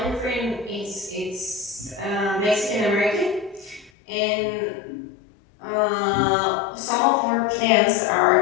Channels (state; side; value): drops out; right; at 3.9 s